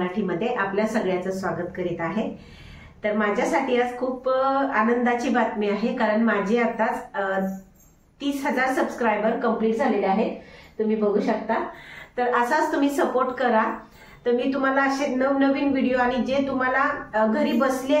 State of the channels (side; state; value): both; identical; correlation 1.00